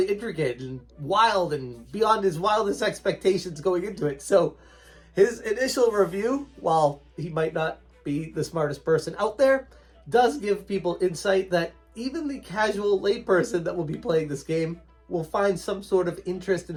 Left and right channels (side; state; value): both; identical; correlation 1.00